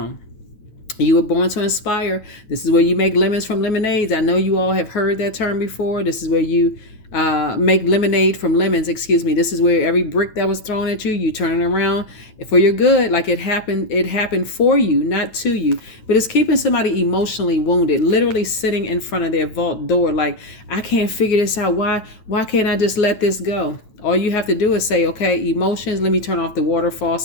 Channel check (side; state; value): right; late; 9.2 ms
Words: You were born to inspire. This is where you make lemons from lemonades. I know you all have heard that term before. This is where you make lemonade from lemons. This is where every brick that was thrown at you, you turn it around for your good. Like it happened for you, not to you. But it's keeping somebody emotionally wounded, literally sitting in front of their vault door like, I can't figure this out. Why can't I just let this go? All you have to do is say, okay, emotions, let me turn off the water